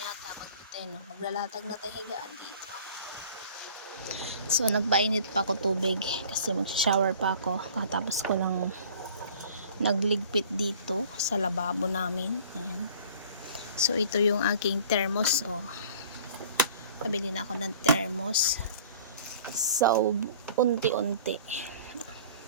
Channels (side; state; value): both; inverted; correlation -0.48